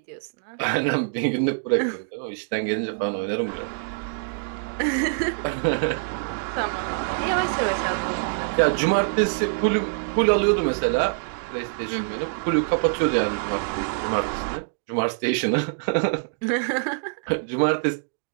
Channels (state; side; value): silent; left; digital silence